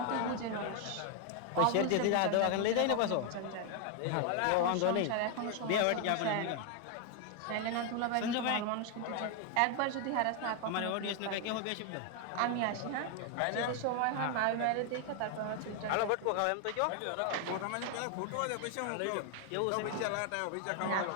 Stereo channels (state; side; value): different; both; correlation 0.01